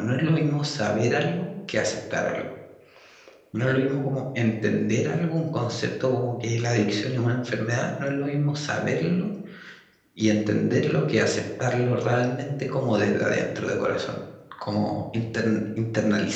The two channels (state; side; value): identical; both; correlation 1.00